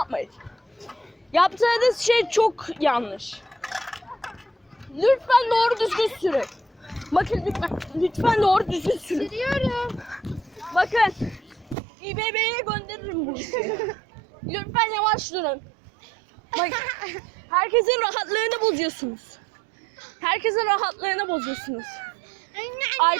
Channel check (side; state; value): left; drops out; at 11.8 s